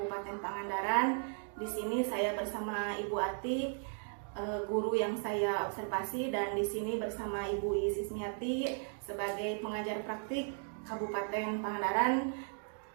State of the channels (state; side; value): silent; left; 54 dB below the other